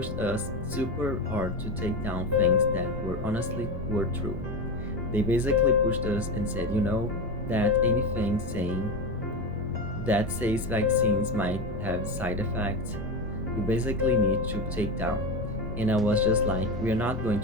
us super hard to take down things that were honestly were true. They basically pushed us and said, that anything saying that says vaccines might have side effects, you basically need to take down. And I was just like, we are not going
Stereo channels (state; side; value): noise; left; rumble, 10 dB below the sound